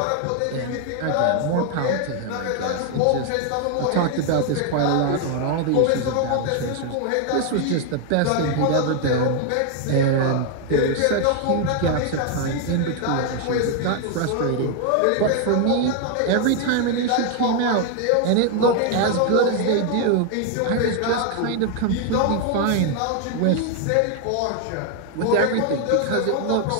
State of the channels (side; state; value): both; different; correlation 0.00